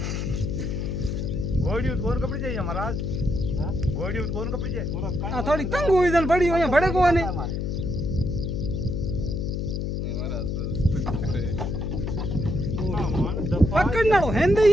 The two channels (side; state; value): left; noise; hum, 1 dB below the sound